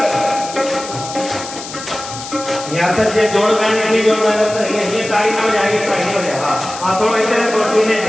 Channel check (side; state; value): left; noise; hiss, 11 dB below the sound